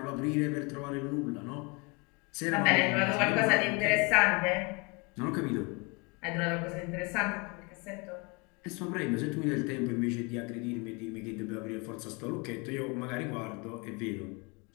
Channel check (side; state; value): right; quieter; 29.8 dB